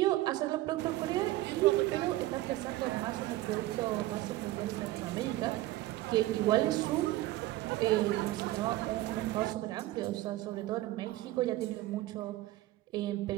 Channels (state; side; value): quieter; left; 16.7 dB